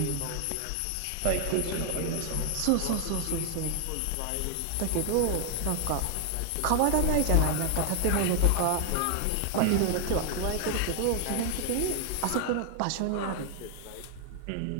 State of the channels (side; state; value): both; different; correlation 0.00